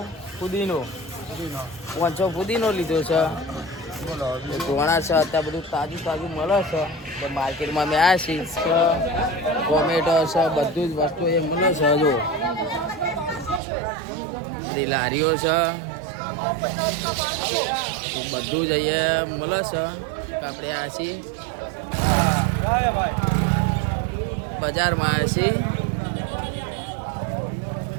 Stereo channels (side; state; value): left; drops out; at 13.6 s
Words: ફુદીનો 500 ફુદીનો લીધો છે। ધોણા છે, અત્યારે બધું તાજું તાજું મળે છે। તો માર્કેટમાં અમે આવ્યા છીએ। ટોમેટો છે, બધું જ વસ્તુ એ મળે છે। જો બધી લારીઓ છે, બધું જ અહીંયા મળે છે। આપણે આ છીએ બજારમાં આવ્યા છીએ।